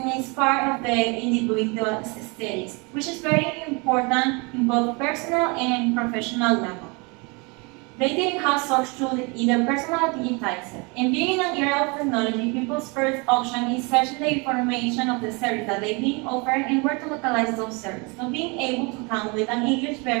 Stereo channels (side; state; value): left; quieter; 29.8 dB